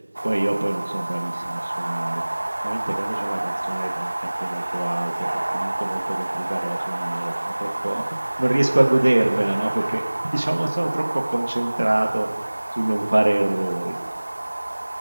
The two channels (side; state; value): both; inverted; correlation -1.00